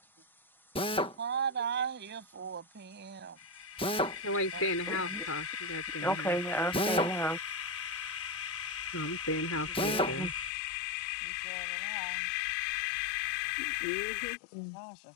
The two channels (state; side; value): drops out; right; at 10.5 s